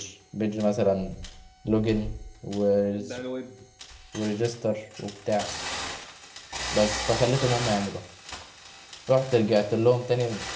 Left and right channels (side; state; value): both; identical; correlation 1.00